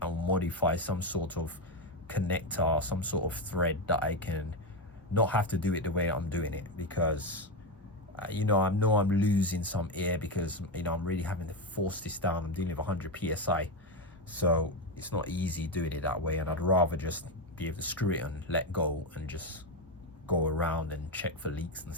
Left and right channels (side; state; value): both; normal; correlation 0.12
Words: and modify some sort of connector, some sort of thread that I can not have to do it the way I'm doing it, because you know, I know I'm losing some air, because you know, I'm really having to force this down. I'm dealing with 100 psi, so it's not easy doing it that way, and I'd rather just be able to screw it and let go and just go around and check for leaks and